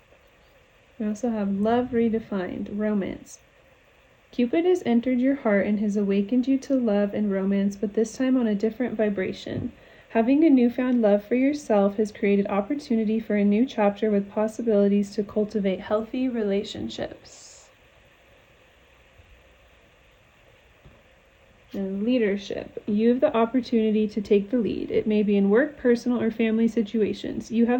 We also have love redefined, romance. Cupid has entered your heart and has awakened you to love and romance, but this time on a different vibration. Having a newfound love for yourself has created opportunity for a new chapter with possibilities to cultivate healthy relationships. And leadership. You have the opportunity to take the lead. It may be in work, personal, or family situations. You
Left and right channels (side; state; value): both; identical; correlation 1.00